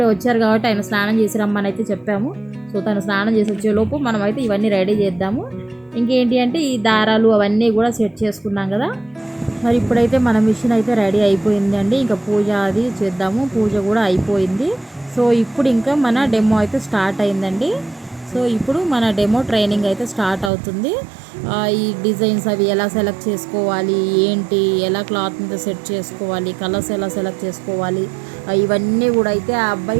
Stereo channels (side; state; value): left; drops out; at 20.5 s